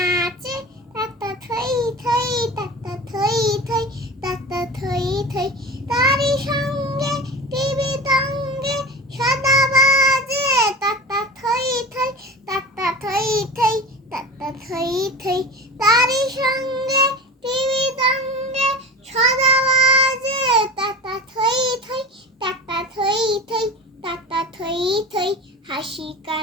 তাতা থই থই তাতা থই থই তাতা থই থই তারি সঙ্গে টিভি তঙ্গে সদা বাজে তাতা থই থই তাতা থই থই তাতা থই থই তারি সঙ্গে টিভি তঙ্গে সদা বাজে তাতা থই থই তাতা থই থই তাতা থই থই হাসি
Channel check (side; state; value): both; normal; correlation 0.32